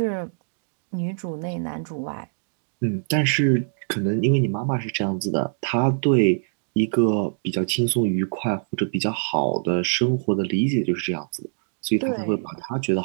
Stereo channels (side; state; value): left; silent; 62 dB below the other